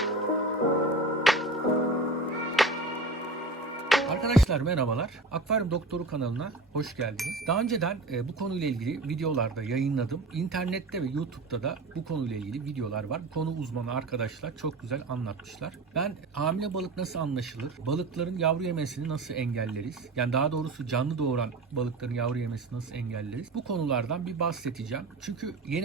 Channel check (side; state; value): left; quieter; 3.1 dB